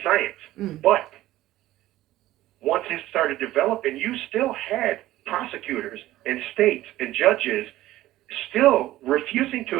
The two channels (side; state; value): left; quieter; 15.5 dB